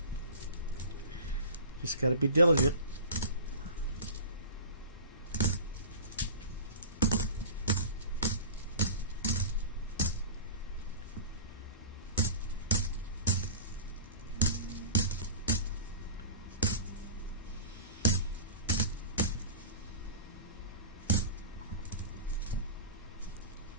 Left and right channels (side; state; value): both; inverted; correlation -0.34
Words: Just got to be diligent.